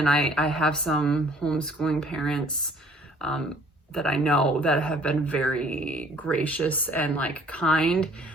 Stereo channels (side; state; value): both; normal; correlation 0.57